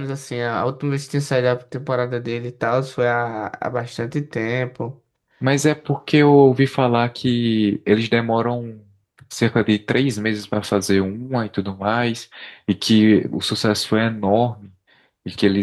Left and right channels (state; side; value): identical; both; correlation 1.00